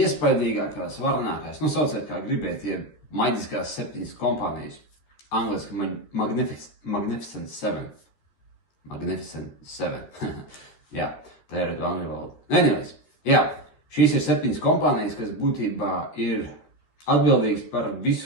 varenākās, sauciet kā gribiet, maģiskās 7 kompānijas. Angliski Magnificent 7. Magnificent 7. Jā, tā ir angļu valoda. Anyways, jā, šīs ir 7 kompānijas, kas būtībā ir atbildīgs par visu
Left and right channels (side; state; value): right; late; 13 ms